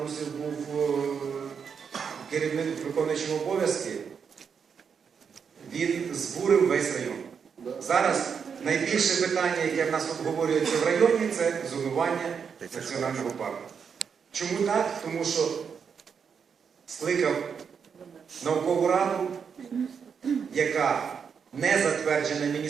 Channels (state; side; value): quieter; left; 6.6 dB